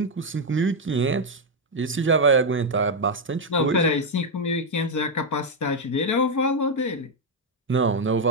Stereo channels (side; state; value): both; normal; correlation 0.02